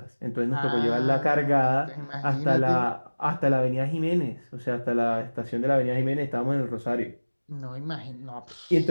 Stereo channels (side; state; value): both; inverted; correlation -1.00